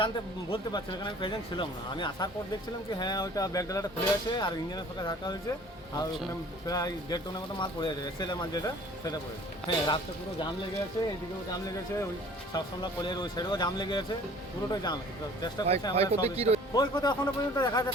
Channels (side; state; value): both; normal; correlation 0.50